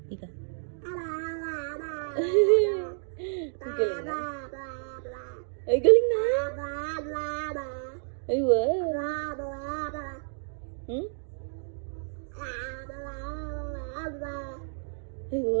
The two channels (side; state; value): left; silent; digital silence